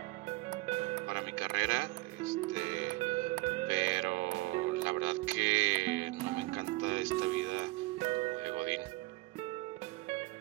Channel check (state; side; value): quieter; left; 21.7 dB